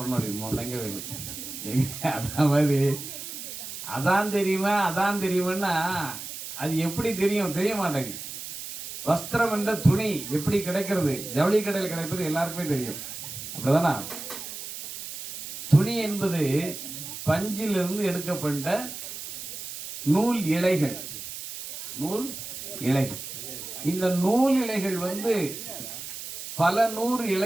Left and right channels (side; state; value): right; noise; hiss, 9 dB below the sound